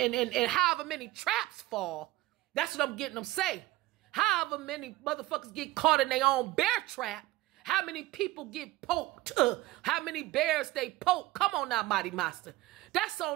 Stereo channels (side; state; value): left; quieter; 17.9 dB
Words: however many traps fall, that's what I'm getting them say. However many motherfuckers get caught in their own bear trap, how many people get poked, how many bears they poke. Come on now, Mighty Master. That's